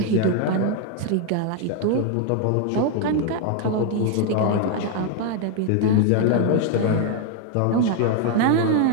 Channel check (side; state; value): both; different; correlation 0.00